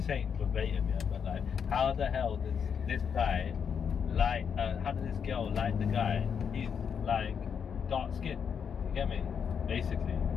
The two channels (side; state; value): right; quieter; 7.1 dB